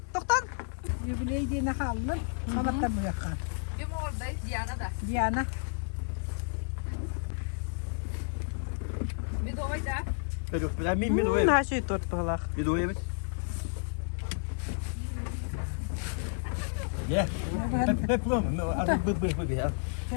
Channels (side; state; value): right; silent; digital silence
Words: Doktan. Jubileyi diye ne halın? Sabahtan bu yakar. Kim oradayız? Diana da. Diana. Bir de oyda. Yok, ben mi doyayım? Her şey tort balak. Bir doyayım. Ya. Hep bu mu? Artık bu ya.